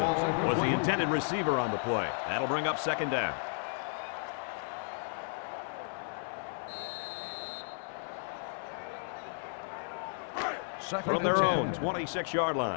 was the intended receiver on the play. That'll bring up 2nd down. From their own 26-yard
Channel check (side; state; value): right; silent; 55 dB below the other